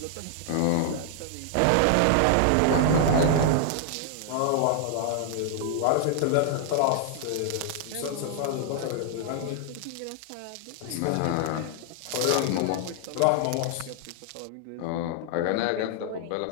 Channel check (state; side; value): different; both; correlation 0.00